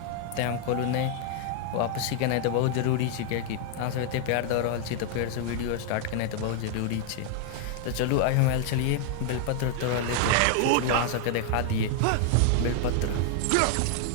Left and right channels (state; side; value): different; both; correlation 0.00